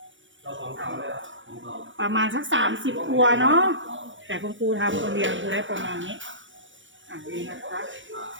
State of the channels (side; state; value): left; late; 0.56 ms